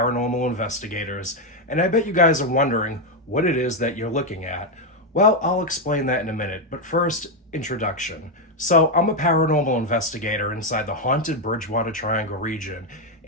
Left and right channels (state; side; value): normal; both; correlation 0.04